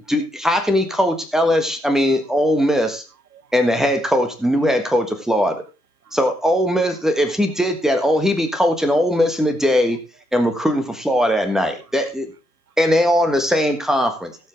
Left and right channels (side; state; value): both; normal; correlation 0.79